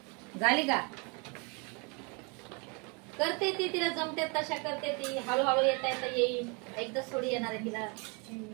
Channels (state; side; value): quieter; left; 31.7 dB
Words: झाली का? करते ती, तिला जमते तशा करते ती. हळूहळू येता येईल. एकदाच थोडी येणार आहे तिला.